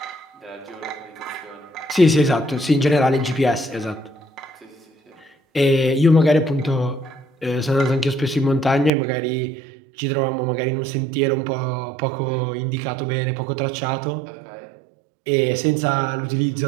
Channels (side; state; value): left; drops out; at 8.9 s